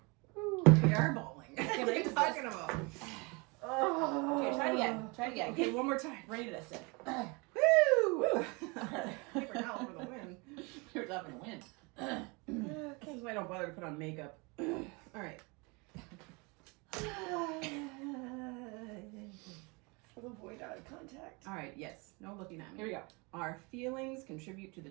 are bawling. What are you raise talking about? Oh. Okay, try it again. Try it again. Okay, one more time. Rated us it. Woo! Paper towel for the win. You're up in the wind. This is why I don't bother to put on makeup. All right. Avoid eye contact. All right, yes. No looking at me. Here we go. Our feelings contribute to the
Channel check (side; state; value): left; quieter; 28.6 dB